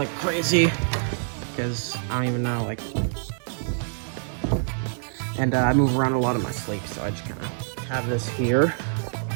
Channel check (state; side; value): silent; left; digital silence